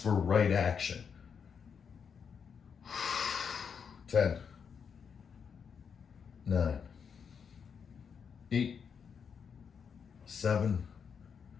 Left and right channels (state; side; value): quieter; right; 6.7 dB